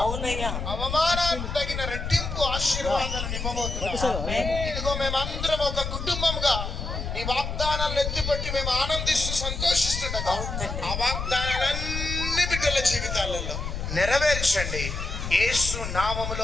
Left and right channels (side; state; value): left; noise; rumble, 4 dB below the sound